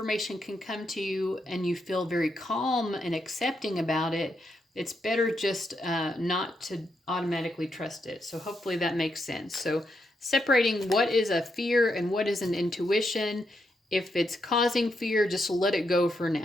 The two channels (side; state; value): both; normal; correlation 0.81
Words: can come to you and you feel very calm and accepting about it, it's better just not to automatically trust it. So hopefully that makes sense. So separating what is a fear and what is an intuition. If it's causing fear, just let it go for